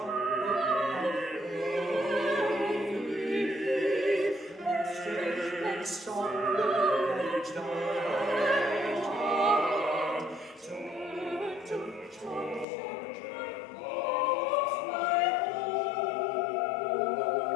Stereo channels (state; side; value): drops out; right; at 12.7 s